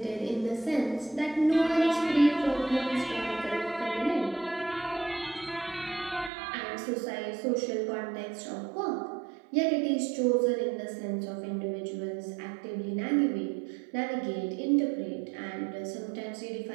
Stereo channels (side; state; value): left; drops out; at 6.3 s